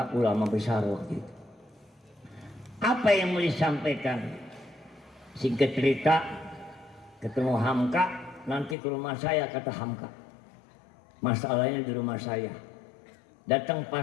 ulama besar waktu itu. Apa yang mau disampaikan? Singkat cerita, ketemu Hamka, nanti ke rumah saya kata Hamka. Masalahnya di rumah saya. Datang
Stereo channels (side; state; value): right; drops out; at 8.8 s